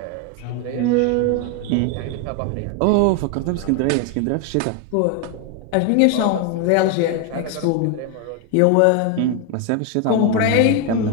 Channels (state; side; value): different; both; correlation 0.01